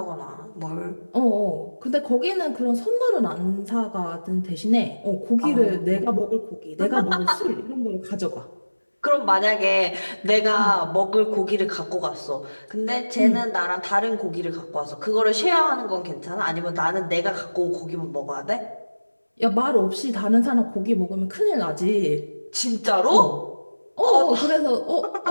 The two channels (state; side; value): inverted; both; correlation -1.00